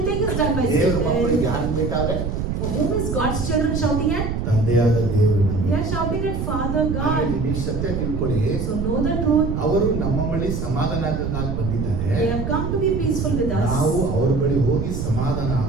is done by ದೇವರ ಮಕ್ಕಳಿಗೆ Satan. ಯಾರು ಬೇಕಾದ್ರೆ Whom is God's children shouting at? ತಂದೆಯಾದ ದೇವರನ್ನ. They are shouting at Father God. ನೀವು ಸತ್ಯ ತಿಳ್ಕೊಳ್ಳಿ. So know the truth. ಅವರು ನಮ್ಮ ಬಳಿ ಸಮಾಧಾನಕ್ಕಾಗಿ ಬಂದಿದ್ದಾರೆ. They have come to be peaceful with us. ನಾವು ಅವರ ಬಳಿ ಹೋಗಿ ಸಮಾಧಾನ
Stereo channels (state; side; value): noise; right; rumble, 2 dB below the sound